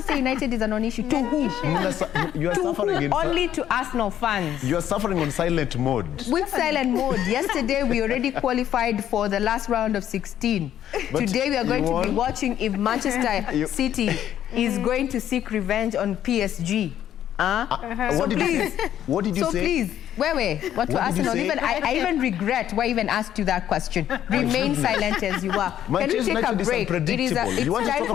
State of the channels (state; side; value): quieter; right; 10.9 dB